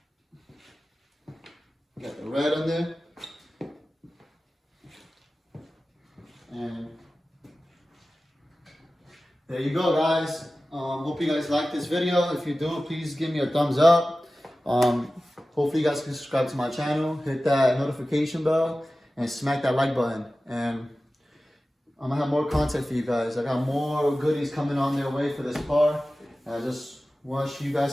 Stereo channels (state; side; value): normal; both; correlation 0.96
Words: Got the red on there. And there you go, guys. Hope you guys like this video. If you do, please give me a thumbs up. Hopefully you guys can subscribe to my channel, hit that notification bell, and smack that like button. And I'm gonna have more content for you guys. I got more goodies coming on their way for this car. I just wish you